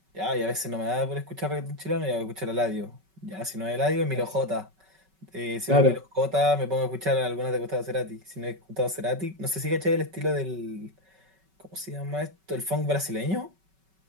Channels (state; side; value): late; left; 5.3 ms